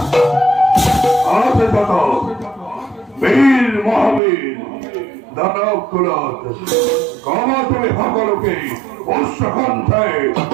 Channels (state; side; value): drops out; left; at 4.2 s